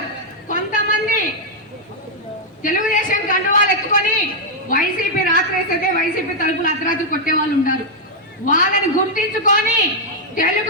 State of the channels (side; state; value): both; normal; correlation -0.04